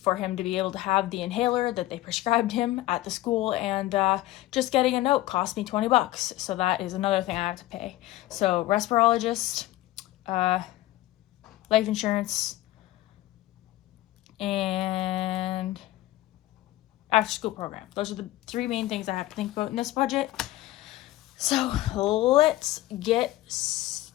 him to be able to have the inhaler that they prescribed him at the school, and just getting a note cost me $20, so that is another thing I have to pay. So respirologist, life insurance, and after school program. Those are the 3 main things I have to think about in this budget. So let's get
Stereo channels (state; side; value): quieter; right; 16.3 dB